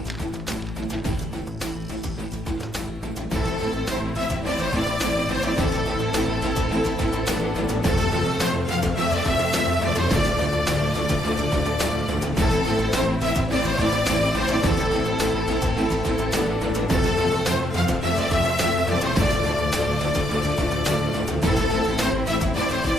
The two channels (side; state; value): both; normal; correlation 0.76